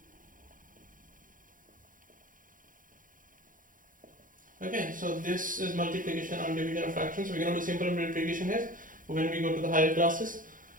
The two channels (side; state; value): left; late; 0.39 ms